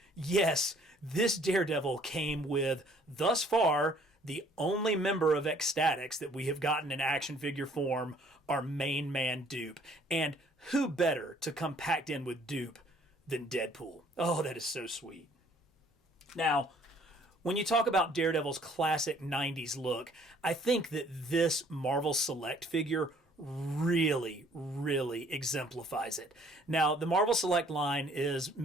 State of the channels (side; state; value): both; normal; correlation 0.59